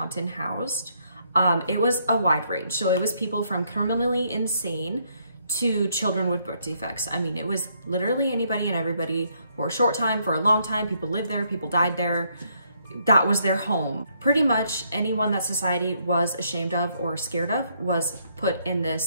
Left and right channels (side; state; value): both; inverted; correlation -0.72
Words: housed, it was a wide range. So it was people from criminally insane to children with birth defects. I mean, it was literally anybody and everybody for a short time, for a long time. People lived there, people died there. That was their home. Pretty much anyone that society was ashamed of or scared of was put in